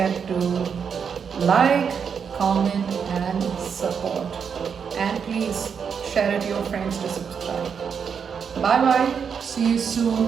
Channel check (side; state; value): left; quieter; 6.8 dB